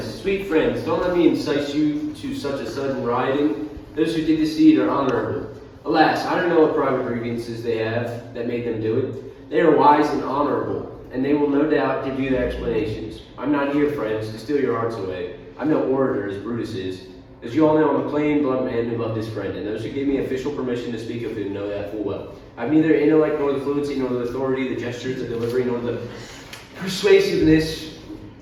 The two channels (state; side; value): identical; both; correlation 1.00